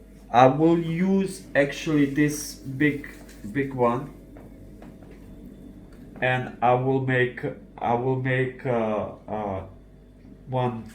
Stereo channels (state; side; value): identical; both; correlation 1.00